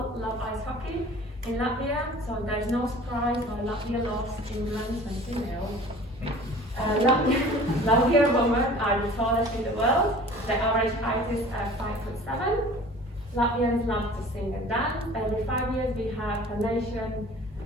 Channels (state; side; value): normal; both; correlation 0.45